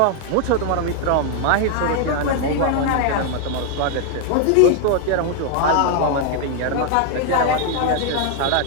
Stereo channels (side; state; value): both; different; correlation 0.00